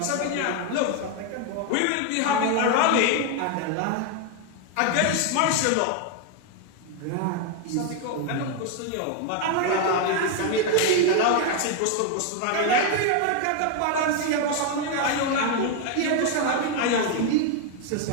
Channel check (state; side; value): different; both; correlation 0.01